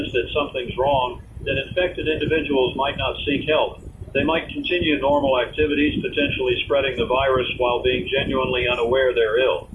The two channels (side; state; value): both; identical; correlation 1.00